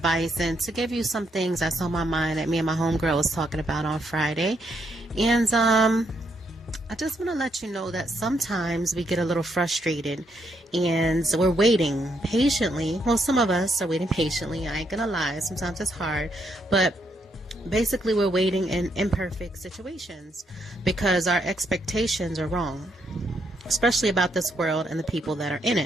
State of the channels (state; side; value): normal; both; correlation 0.76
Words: and to give you some things that's on my mind that me and my homegirl was talking about on Friday. And I just want to let you know that sometimes we get a little frustrated and we're waiting patiently. Well, some of us are waiting patiently. I ain't gonna lie. Sometimes it's hard, but basically we're waiting in imperfect situations because our expectations are wrong, especially about this world and the people that are in